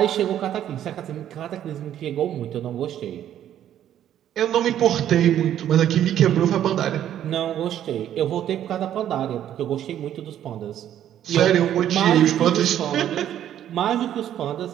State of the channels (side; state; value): left; quieter; 10.9 dB